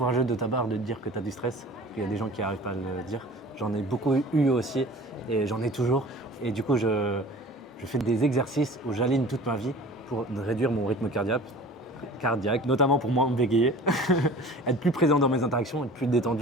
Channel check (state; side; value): normal; both; correlation 0.43